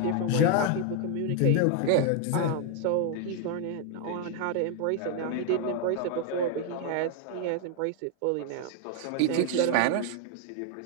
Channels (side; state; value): both; different; correlation 0.00